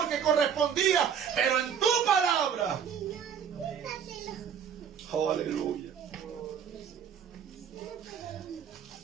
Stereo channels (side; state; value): left; quieter; 7.8 dB